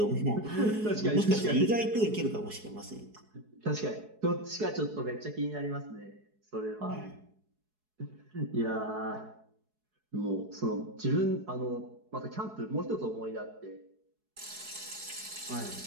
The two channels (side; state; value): left; late; 4.7 ms